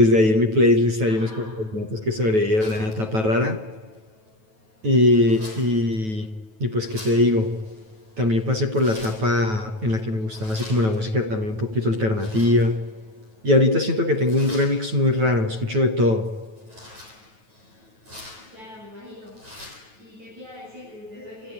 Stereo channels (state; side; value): late; left; 9.2 ms